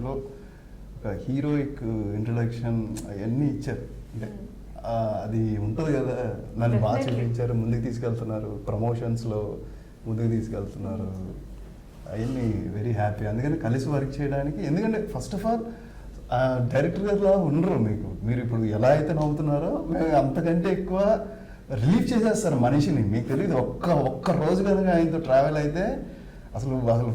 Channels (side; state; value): both; identical; correlation 1.00